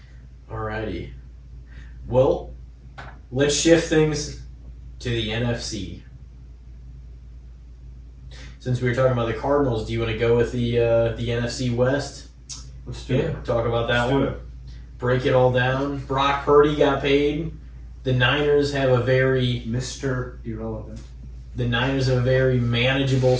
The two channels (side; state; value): both; identical; correlation 1.00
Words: Alrighty. Well, let's shift things to the NFC. Since we were talking about the Cardinals, do you want to go with the NFC West? Let's do it. Talk about that Let's one. do it. Break it all down. Brock Purdy got paid. The Niners have a very Mr. Irrelevant. manageable